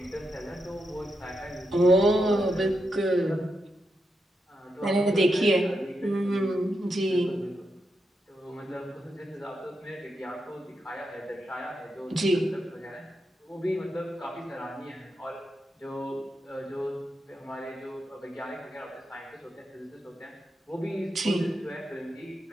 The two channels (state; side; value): normal; both; correlation 0.85